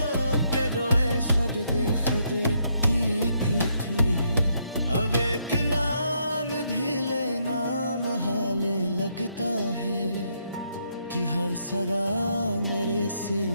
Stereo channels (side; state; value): both; inverted; correlation -0.75